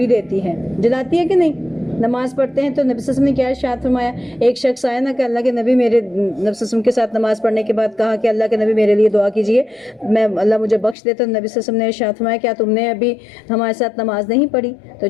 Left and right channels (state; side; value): drops out; right; at 11.0 s